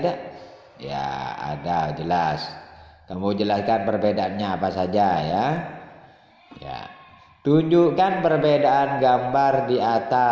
Ya, ada, jelas. Kamu jelaskan perbedaannya apa saja, ya. Ya. Tunjukkan perbedaan gambar di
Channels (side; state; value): both; identical; correlation 1.00